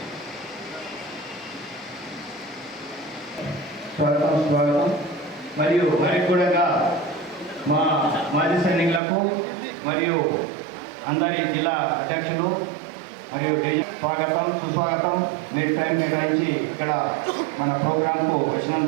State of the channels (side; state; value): left; drops out; at 9.0 s